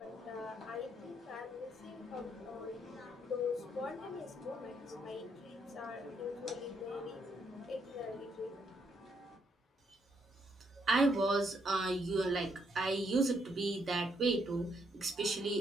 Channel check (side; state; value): both; normal; correlation 0.74